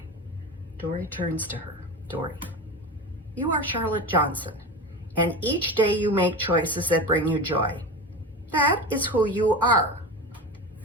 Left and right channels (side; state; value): both; normal; correlation 0.27